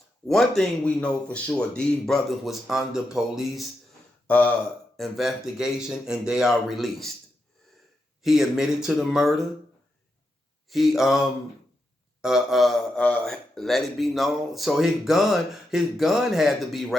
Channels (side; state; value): both; normal; correlation 0.85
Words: One thing we know for sure, these brothers was under police investigation and they are released. He admitted to the murder. He let it be known. So his gun had to be